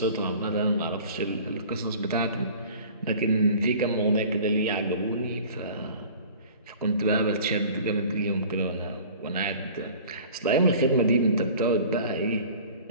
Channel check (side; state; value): both; inverted; correlation -0.45